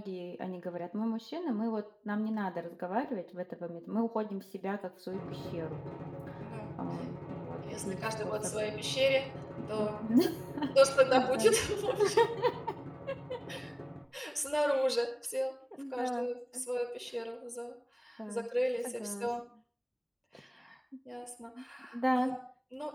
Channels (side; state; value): both; identical; correlation 1.00